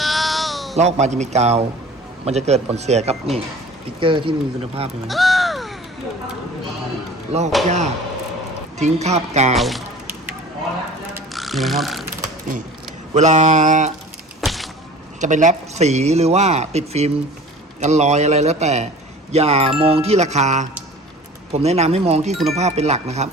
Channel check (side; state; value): both; normal; correlation 0.43